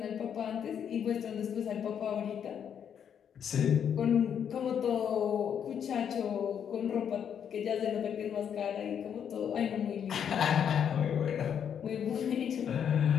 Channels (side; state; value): right; quieter; 8.3 dB